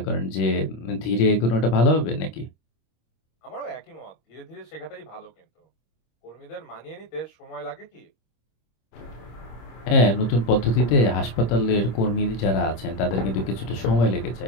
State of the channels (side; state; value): right; late; 26 ms